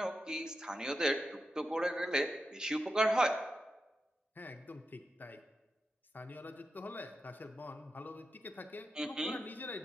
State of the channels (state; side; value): normal; both; correlation 0.89